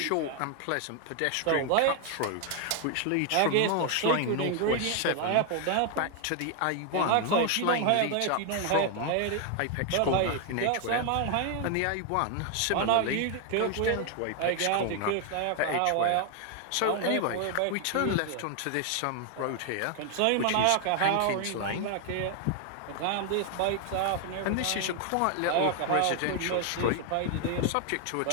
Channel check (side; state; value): both; different; correlation 0.00